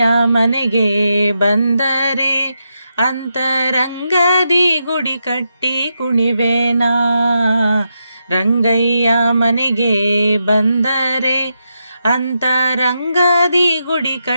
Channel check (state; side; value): inverted; both; correlation -0.84